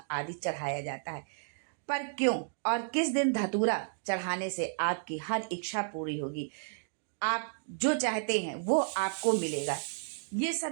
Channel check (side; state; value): left; silent; digital silence